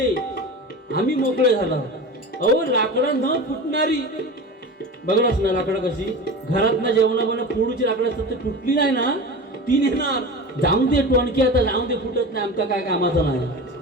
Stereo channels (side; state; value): both; normal; correlation 0.31